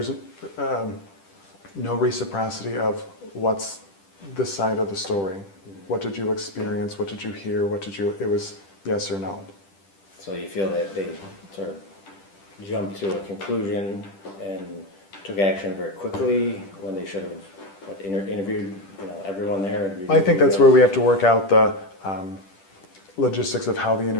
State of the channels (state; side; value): late; right; 10 ms